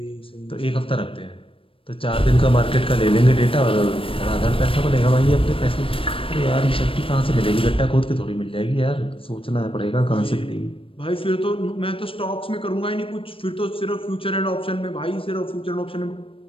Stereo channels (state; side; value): late; right; 0.26 ms